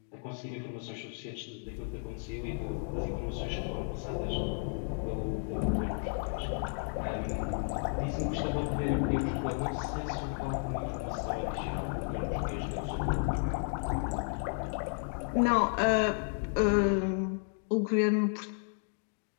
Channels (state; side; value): silent; right; 56 dB below the other